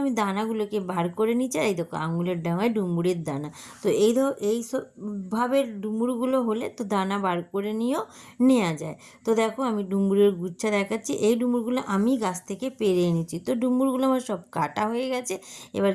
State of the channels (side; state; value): both; identical; correlation 1.00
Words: আমি দানাগুলোকে বার করে নিচ্ছি। আর এই দেখো, আঙুলের ডাঙায় ডুমুরের দানা। তো এই ভাবে ডুমুরগুলো হলে তো দানা বার করে নিয়েও নেওয়া যায়। তো দেখো, আমি ডুমুরের গুচ্ছা দেখাচ্ছি। এই ডুমুরগুলো আমি গাছ থেকে পেরে এনেছি। তো ডুমুরগুলো আমার সব কাটা হয়ে গেছে। এবার